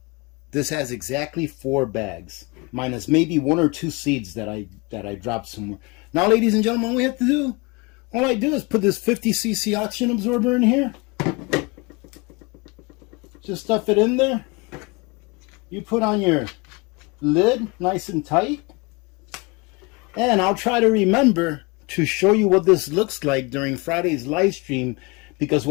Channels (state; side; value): quieter; right; 26.8 dB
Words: This has exactly 4 bags, minus maybe 1 or 2 seeds that I dropped somewhere. Now, ladies and gentlemen, all we have to do, all I do is put this 50cc oxygen absorber in here. Just stuff it in there. You put on your lid nice and tight. And I'll try to remember to show you what this looks like during Friday's live stream, because